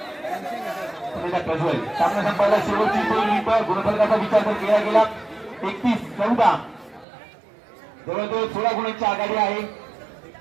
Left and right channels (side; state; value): left; drops out; at 7.1 s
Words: प्रज्वल सामना संपायला शेवटची 2 मिनिटं गुणफलकाचा विचार तर केला गेला 31-14 जवळजवळ 16 गुणांची आघाडी आहे.